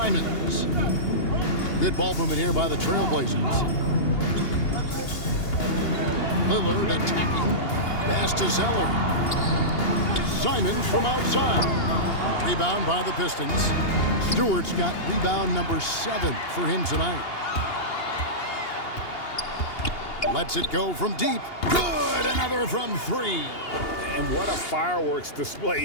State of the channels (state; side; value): late; right; 2.8 ms